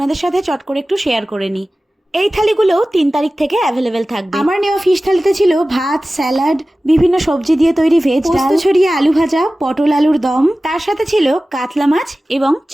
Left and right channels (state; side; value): normal; both; correlation 0.96